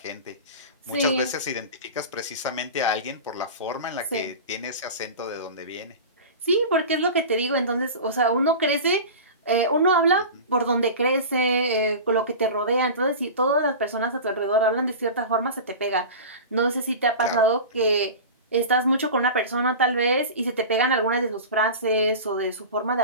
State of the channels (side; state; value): both; inverted; correlation -0.31